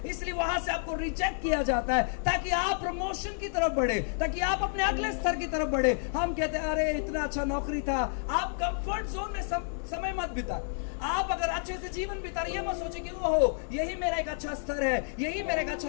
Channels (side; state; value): right; silent; 56 dB below the other